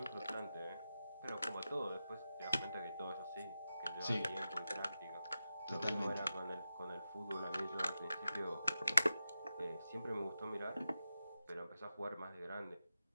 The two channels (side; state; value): both; inverted; correlation -0.91